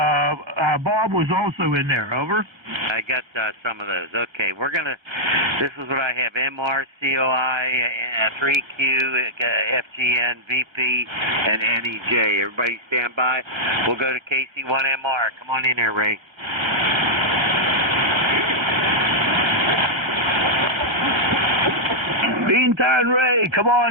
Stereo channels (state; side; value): late; left; 1.4 ms